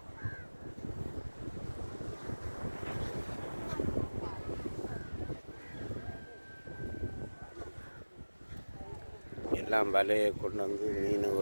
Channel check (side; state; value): both; inverted; correlation -1.00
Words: எல்லாம் வலையை கொண்டு வந்து மீன்